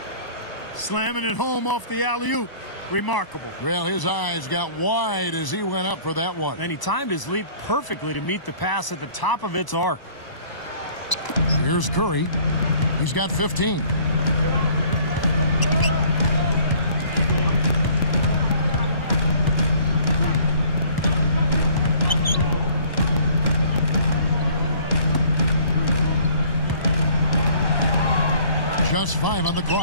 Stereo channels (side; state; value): right; late; 1.0 ms